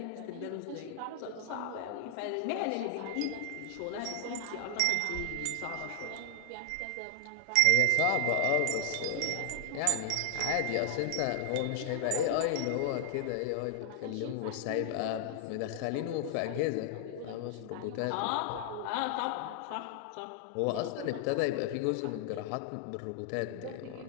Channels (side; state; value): both; different; correlation 0.00